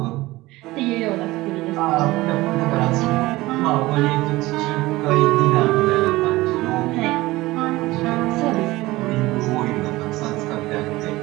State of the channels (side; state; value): left; quieter; 19.1 dB